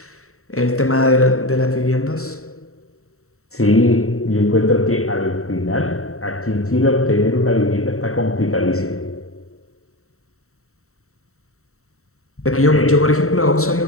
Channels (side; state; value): right; late; 0.64 ms